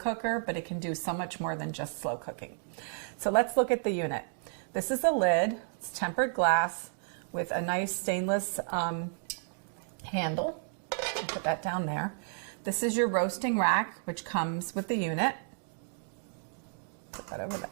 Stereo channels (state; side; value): silent; left; digital silence